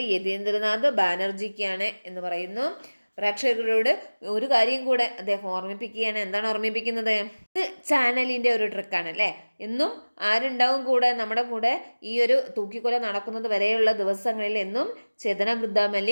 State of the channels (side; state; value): both; inverted; correlation -1.00